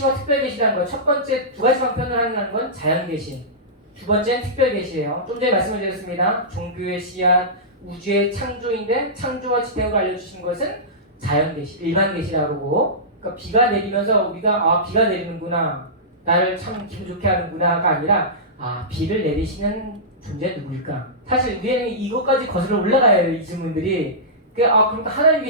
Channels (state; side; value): normal; both; correlation -0.17